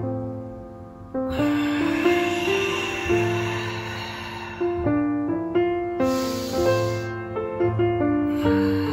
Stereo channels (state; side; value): identical; both; correlation 1.00